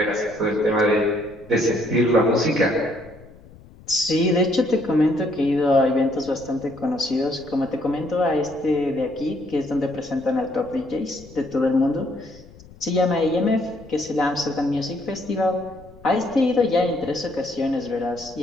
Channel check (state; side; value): noise; left; rumble, 22 dB below the sound